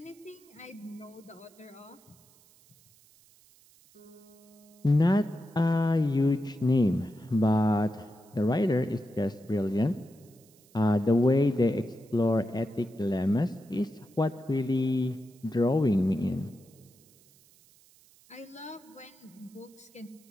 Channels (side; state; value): right; noise; hiss, 29 dB below the sound